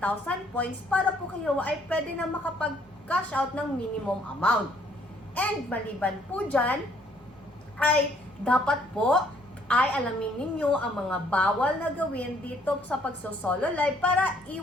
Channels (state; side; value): normal; both; correlation 0.65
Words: points para po kayo ay pwede na makapag-cash out ng minimum amount. And maliban po dyan, ay dapat po ay alamin ninyo ang mga bawal na gawin dito sa pagsosolo live para